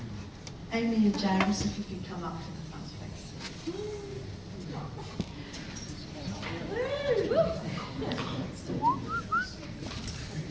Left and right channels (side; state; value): both; identical; correlation 1.00